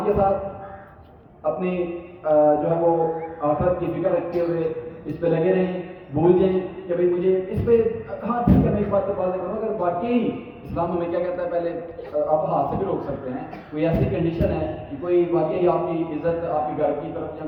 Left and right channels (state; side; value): identical; both; correlation 1.00